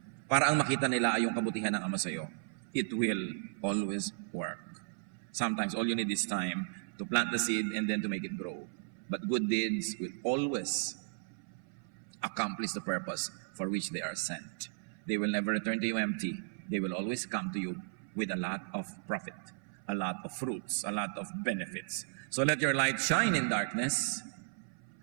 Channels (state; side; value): silent; left; 54 dB below the other